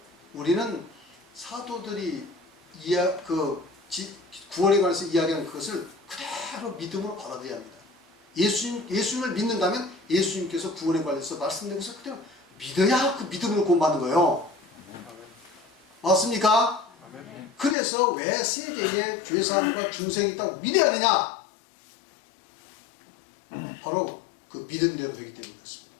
우리는 사도들이 구원에 관해서 이야기하는 그것을 그대로 그대로 믿음으로 받아들여야 합니다. 예수님을 믿는다면 예수님께서 구원에 관해서 말씀드린 그대로 믿어야 그 믿음으로 구원받는 거예요. 맞습니까? 그래서 왜 세대에 죄사함과 중생이 있다고 믿어야 하느냐? 바로 그 믿음대로 되기 때문에 그렇습니다.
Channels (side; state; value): right; drops out; at 17.8 s